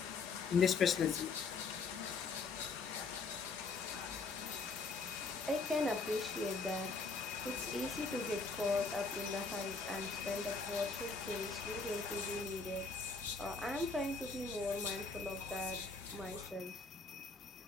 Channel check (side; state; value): right; quieter; 4.3 dB